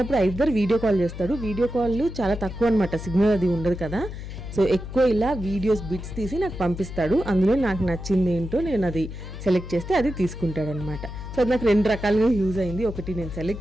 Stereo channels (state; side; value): noise; left; hum, 9 dB below the sound